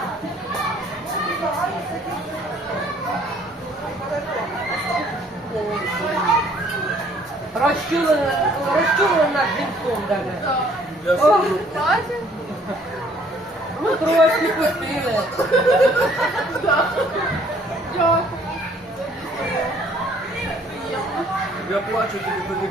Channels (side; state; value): both; normal; correlation 0.60